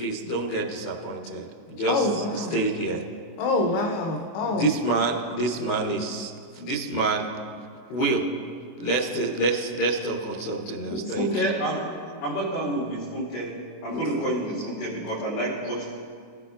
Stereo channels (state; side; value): late; right; 24 ms